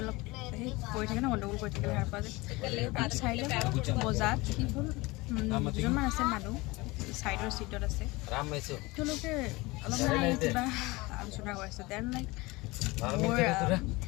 অলপ সেই কৰি থাকে ন গণ্ডগোল কৰি থাকিলে সাৰ পোৱা যায় চাইডে বজাত কি হ'ল দুজনমান আছে মানুহ চাইডৰ চিটত আছে তেওঁলোকে অলপ মানে কিবা আলোচনা কৰিছে দেন লাইক মোৰ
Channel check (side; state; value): right; quieter; 22.5 dB